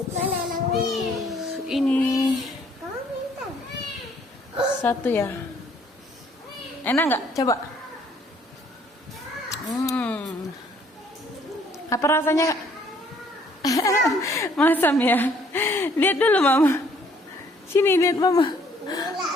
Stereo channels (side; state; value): both; normal; correlation 0.62